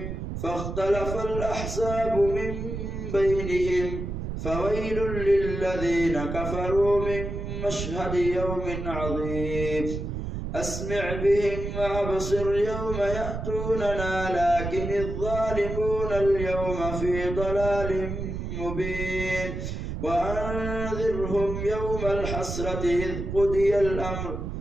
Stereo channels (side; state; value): right; noise; rumble, 5 dB below the sound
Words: فاختلف الأحزاب من بينهم فويل للذين كفروا من مشهد يوم عظيم أسمع بهم وأبصر يوم يأتوننا لكن الظالمون اليوم في ضلال مبين وأنذرهم يوم الحسرة إذ قضي الأمر